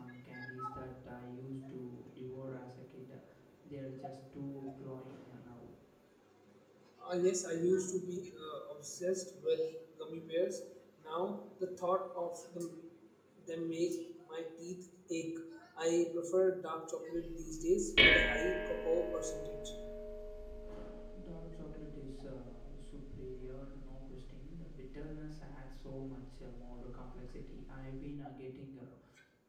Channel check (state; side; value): identical; both; correlation 1.00